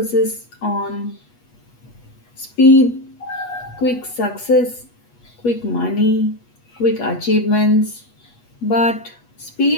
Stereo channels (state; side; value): late; right; 8.3 ms